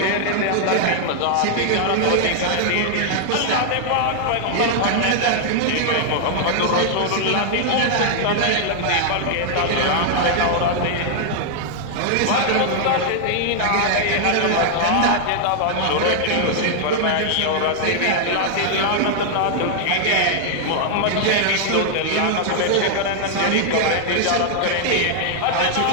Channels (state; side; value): different; both; correlation 0.00